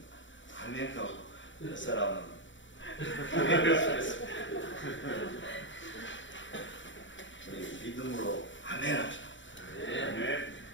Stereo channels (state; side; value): late; right; 0.55 ms